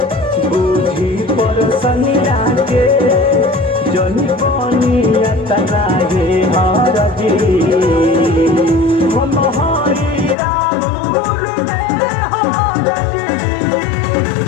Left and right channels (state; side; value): drops out; right; at 10.4 s